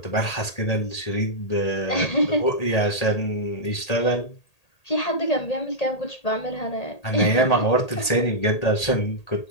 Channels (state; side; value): late; right; 1.8 ms